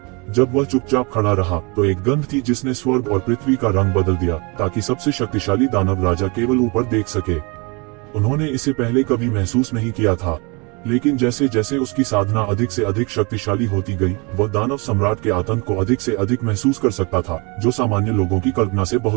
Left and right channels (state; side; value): quieter; left; 29.7 dB